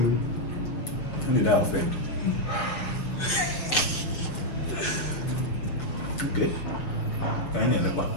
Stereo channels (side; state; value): right; late; 6.8 ms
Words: How did I offend? Okay. Can you look back?